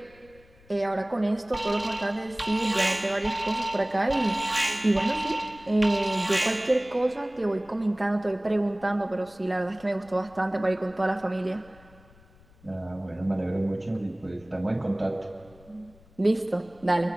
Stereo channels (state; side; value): noise; left; rumble, 26 dB below the sound